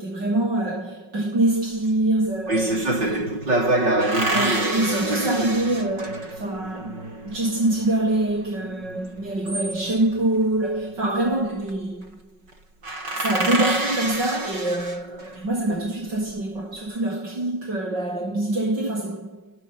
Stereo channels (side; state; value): left; late; 5.4 ms